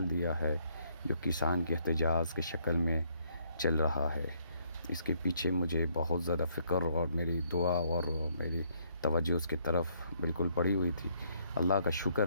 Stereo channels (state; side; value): inverted; both; correlation -0.69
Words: دیا ہے جو کسان کے احتجاج کی شکل میں چل رہا ہے۔ اس کے پیچھے مجھے بہت زیادہ فکر اور میری دعا اور میری توجہ اس کی طرف بالکل پڑی ہوئی تھی۔ اللہ کا